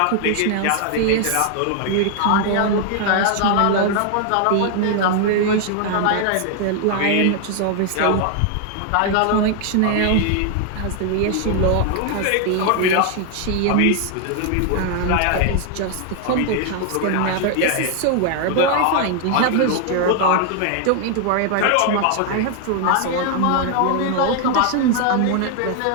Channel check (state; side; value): different; both; correlation 0.00